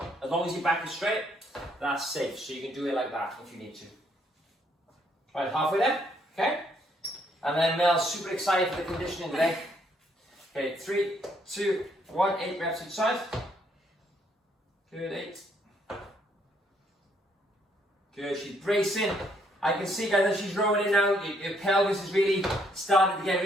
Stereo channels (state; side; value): normal; both; correlation 0.70